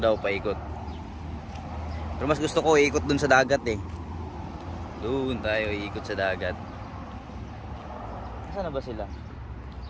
paikot. Pero mas gusto ko ikot dun sa dagat eh. Doon tayo ikot sa dagat. Saan na ba sila?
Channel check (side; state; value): both; identical; correlation 1.00